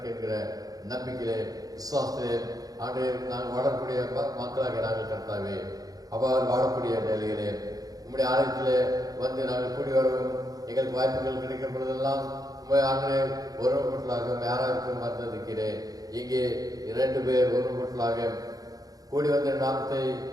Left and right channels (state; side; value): late; left; 0.18 ms